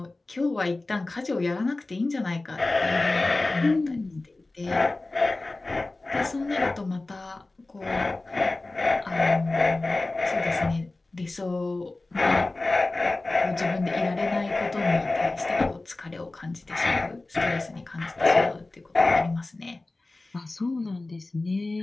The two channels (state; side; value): quieter; right; 3.1 dB